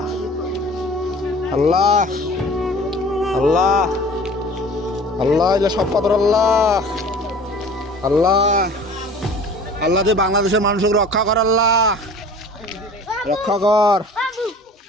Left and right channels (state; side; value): normal; both; correlation 0.44